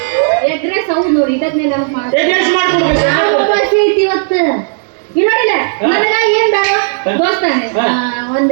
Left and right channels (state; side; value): silent; left; digital silence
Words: ಎಗ್ರೆಸ್ ಹೌದು ನೋಡಿ, ಇದಕ್ಕೆ ಎಗ್ರೆಸ್ ಮಾಡ್ಕೊಡ್ಬೇಕು. ಐತಿ ಇವತ್ತು. ಇಲ್ಲ ನನಗ ಏನ್ ಬೇಡ ದೋಸ್ತಾನೆ, ಒಂದ್